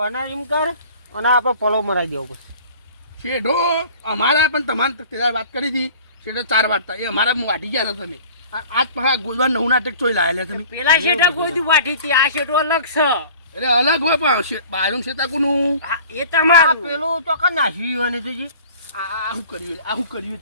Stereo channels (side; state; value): both; inverted; correlation -0.46